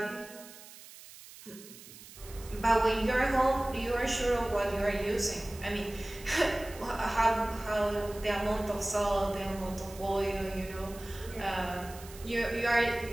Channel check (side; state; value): right; noise; hiss, 18 dB below the sound